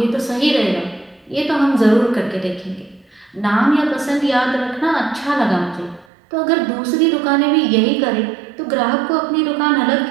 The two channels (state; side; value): drops out; left; at 6.1 s